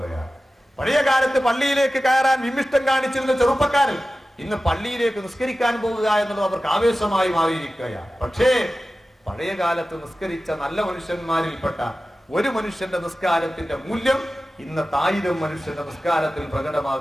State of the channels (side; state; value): both; normal; correlation 0.95